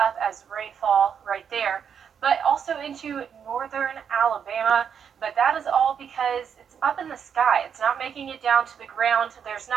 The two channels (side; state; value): left; quieter; 7.6 dB